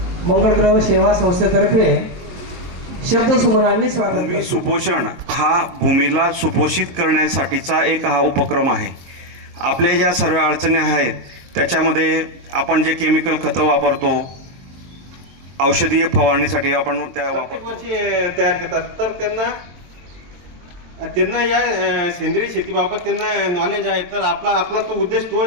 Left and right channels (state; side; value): late; left; 23 ms